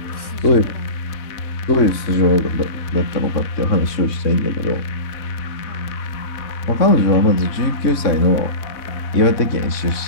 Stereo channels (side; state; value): right; late; 3.6 ms